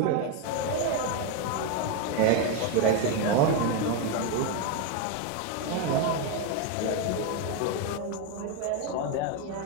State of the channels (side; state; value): both; different; correlation 0.02